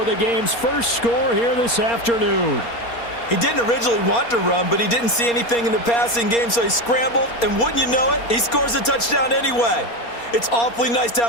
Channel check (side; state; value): right; late; 4.3 ms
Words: the game's first score here this afternoon. He didn't originally want to run, but he didn't see anything in the passing game, so he scrambled. And wouldn't you know it, he scores a touchdown anyway. It's awfully nice to